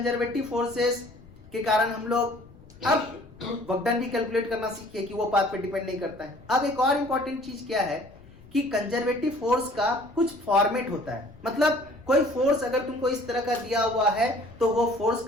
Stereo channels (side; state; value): left; noise; rumble, 23 dB below the sound